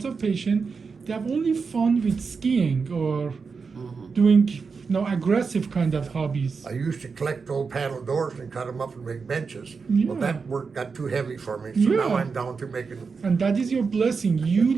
of patients, they have only fun with skiing or doing aggressive kind of hobbies. I used to collect old paddle doors and cut them up and make benches. Yeah. Well, that work got too heavy for me, so now Yeah. I'm down to making. And that is your blessing. You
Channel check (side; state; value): left; quieter; 5.1 dB